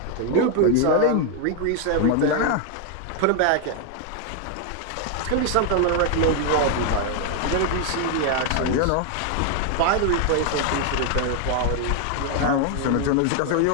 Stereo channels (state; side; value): different; both; correlation 0.00